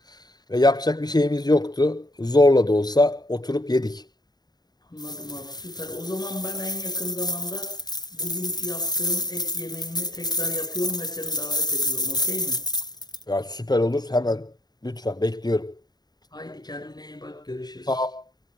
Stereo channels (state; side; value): late; right; 0.20 ms